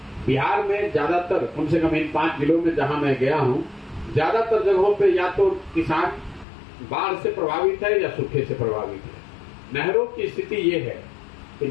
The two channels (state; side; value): drops out; right; at 6.5 s